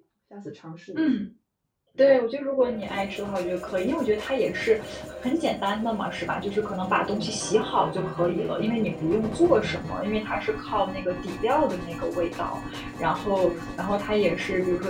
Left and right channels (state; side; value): identical; both; correlation 1.00